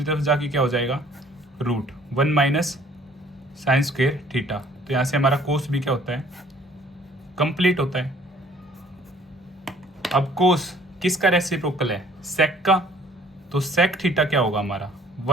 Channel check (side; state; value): both; normal; correlation 0.56